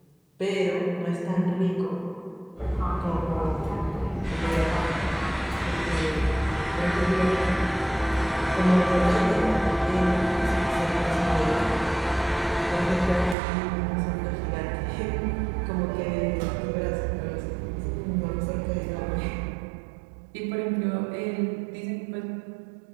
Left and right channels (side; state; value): left; drops out; at 13.4 s